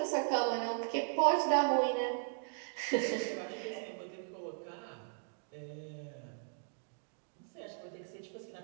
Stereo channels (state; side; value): silent; left; 53 dB below the other